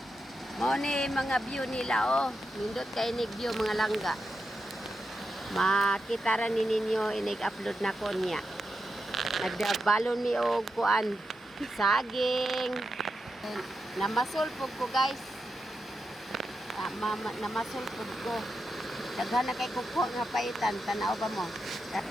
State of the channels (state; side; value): normal; both; correlation 0.88